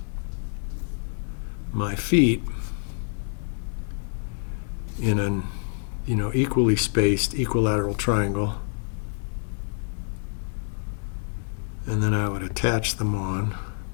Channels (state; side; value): silent; right; 60 dB below the other